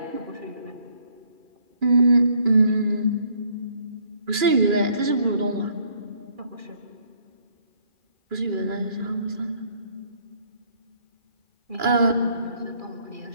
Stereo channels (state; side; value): late; left; 2.4 ms